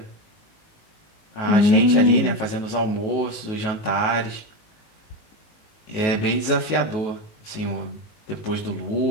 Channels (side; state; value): right; late; 19 ms